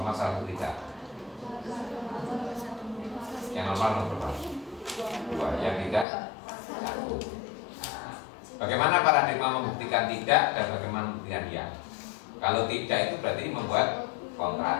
salah satu tidak? Yang normal nomor berapa? Dua, yang tidak satu. Nah, bagaimana paradigma membuktikan tidak dan bagaimana membuktikan ya? Kalau tidak itu berarti membuat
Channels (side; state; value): right; drops out; at 6.1 s